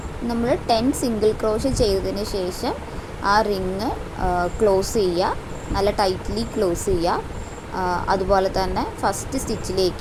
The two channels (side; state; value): both; identical; correlation 1.00